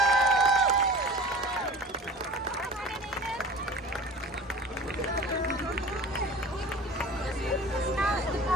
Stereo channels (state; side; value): normal; both; correlation 0.40